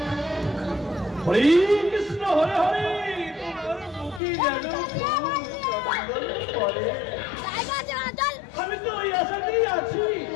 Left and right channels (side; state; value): right; drops out; at 4.2 s